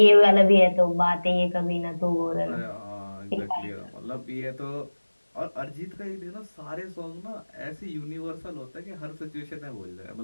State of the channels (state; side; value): inverted; both; correlation -1.00